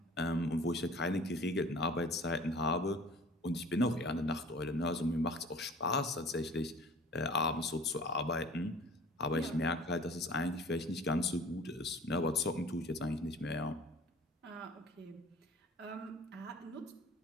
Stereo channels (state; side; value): normal; both; correlation 0.46